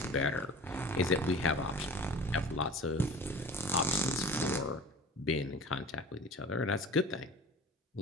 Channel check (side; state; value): both; normal; correlation 0.39